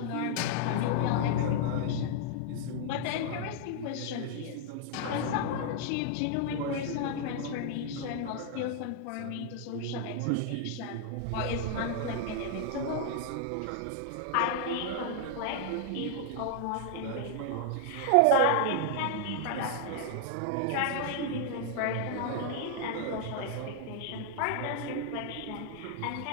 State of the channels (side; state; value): both; different; correlation 0.00